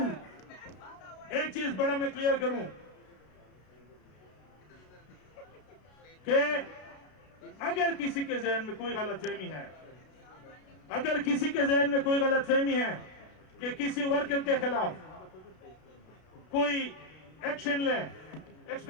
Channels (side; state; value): right; late; 32 ms